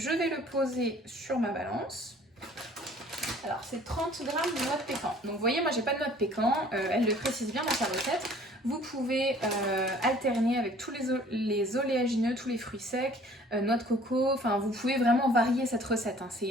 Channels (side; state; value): both; normal; correlation 0.53